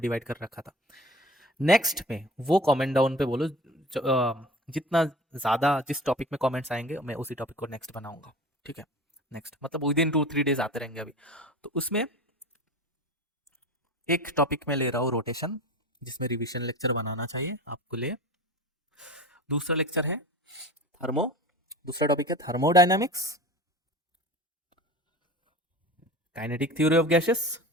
कर रखा था। नेक्स्ट में वो कमेंट डाउन पे बोलो, जितना ज़्यादा जिस टॉपिक में कमेंट्स आएंगे मैं उसी टॉपिक को नेक्स्ट बनाऊंगा। ठीक है, नेक्स्ट मतलब विद इन 2-3 डेज आते रहेंगे अभी। तो उसमें एक टॉपिक में ले रहा हूँ रोटेशन, जिसमें रिवीजन लेक्चर बनाना चाहिए आपको लिए। दूसरा लेक्चर है थर्मो, दूसरा टॉपिक है thermodynamics, kinetic theory of gases,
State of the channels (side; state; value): both; normal; correlation 0.37